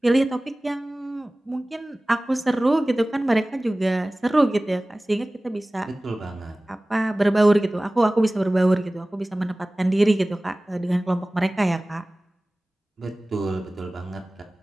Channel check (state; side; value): normal; both; correlation 0.98